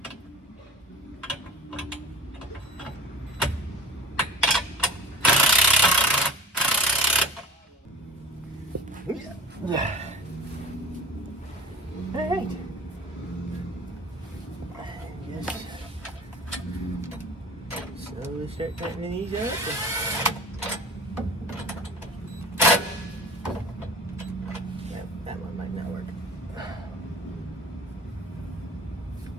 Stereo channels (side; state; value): both; normal; correlation 0.40